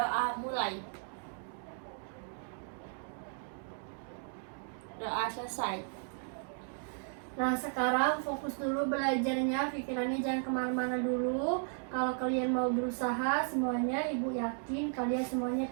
mulai. Doa selesai. Nah, sekarang fokus dulu belajarnya, pikirannya jangan kemana-mana dulu. Kalau kalian mau berusaha, semuanya Ibu yakin kalian semuanya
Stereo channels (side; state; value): left; silent; 54 dB below the other